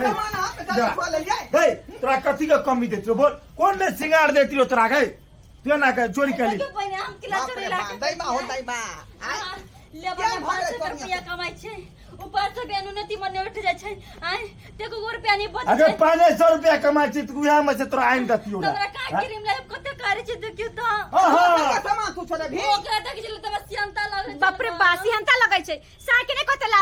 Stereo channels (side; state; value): both; identical; correlation 1.00